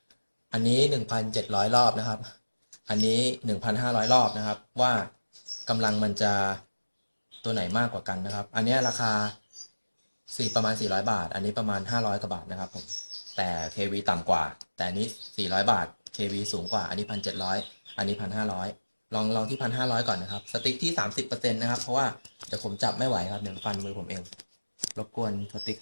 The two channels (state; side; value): inverted; both; correlation -1.00